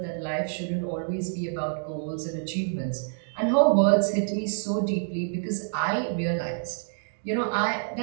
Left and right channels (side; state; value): left; silent; digital silence